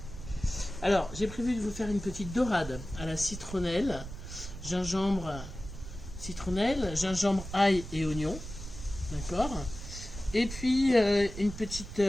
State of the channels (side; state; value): right; noise; rumble, 10 dB below the sound